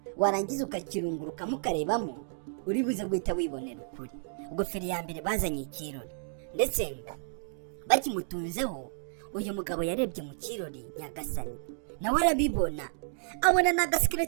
warangiza ukakirungurukamo ukarebamo, uri buze guhita wibonera ukuri. Ubwo feri ya mbere bazanye ikirori, ndetse bakimutunzeho uyu mugabo yarebye mu kirori nyagasani, nawe arabibona, abona na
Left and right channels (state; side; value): silent; left; digital silence